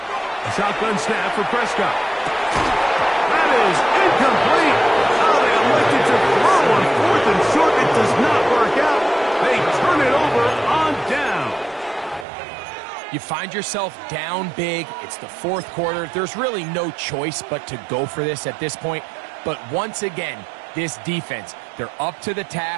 shotgun snap for Prescott. That is incomplete. Oh, they elected to throw on 4th and short. It does not work out. They turn it over on down. You find yourself down big. It's the fourth quarter. There's really no choice but to go for this at this point. But once again, this defense, they're up to the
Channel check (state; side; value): drops out; left; at 12.2 s